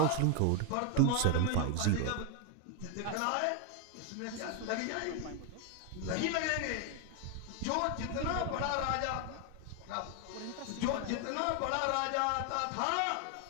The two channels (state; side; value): different; both; correlation 0.01